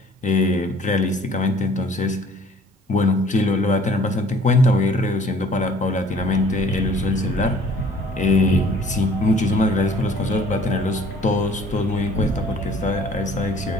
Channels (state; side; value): normal; both; correlation 0.54